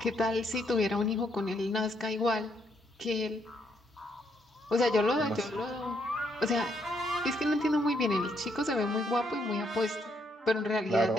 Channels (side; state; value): both; normal; correlation 0.74